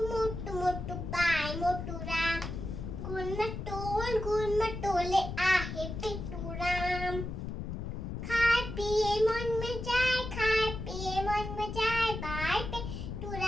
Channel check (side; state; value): left; noise; rumble, 6 dB below the sound